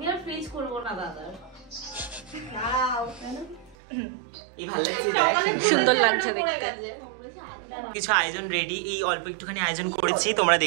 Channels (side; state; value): left; drops out; at 3.8 s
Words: আর ফ্রিজ করবো না দাদা। এই ভালো লাগছে দেখ, সুন্দর লাগছে দেখতে। কিছু আয়োজন রেডি, এই অল্প একটুখানি আয়োজন করেছি, তোমরা